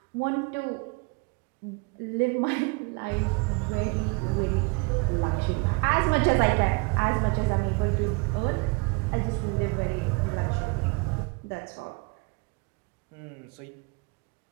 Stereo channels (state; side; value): quieter; left; 28.6 dB